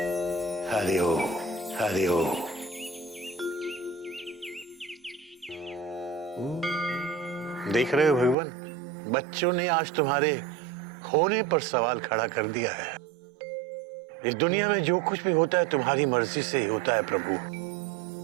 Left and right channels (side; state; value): left; drops out; at 8.3 s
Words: हरिओम हरिओम। देख रहे हो भगवान, बच्चों ने आज तुम्हारे होने पर सवाल खड़ा कर दिया है। इस दुनिया में जो कुछ भी होता है तुम्हारी मर्जी से ही होता है प्रभु।